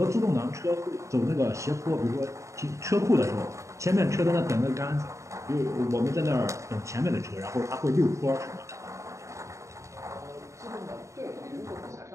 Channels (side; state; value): left; late; 0.15 ms